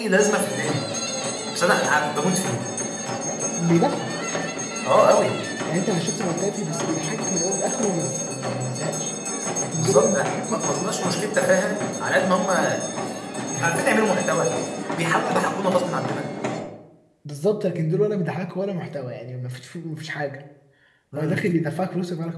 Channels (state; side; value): identical; both; correlation 1.00